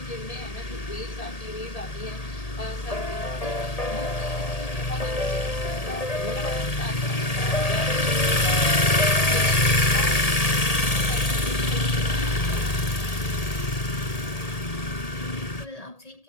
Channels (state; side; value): late; right; 1.8 ms